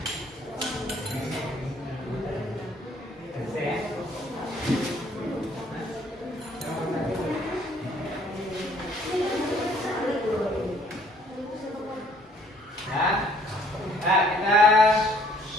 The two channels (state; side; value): normal; both; correlation 0.61